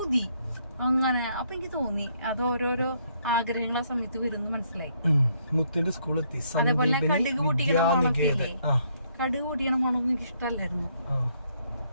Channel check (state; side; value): inverted; both; correlation -0.71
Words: അങ്ങനെ. അപ്പൊ എനിക്ക് തോന്നി അത് ഓരോരോ ആഗ്രഹങ്ങളെ സമയത്ത് വരുന്നു മനസ്സിലായി. മുത്തിന്റെ സ്കൂളെത്തി. അതേപോലെ കടുക് പൊട്ടിക്കണ മണക്കില്ലേ, കടുക് പൊട്ടിക്കണ മണമൊന്നും എനിക്ക് ഇഷ്ടമല്ലായിരുന്നു.